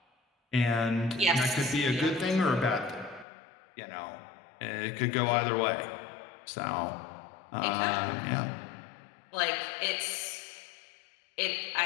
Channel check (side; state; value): right; drops out; at 3.2 s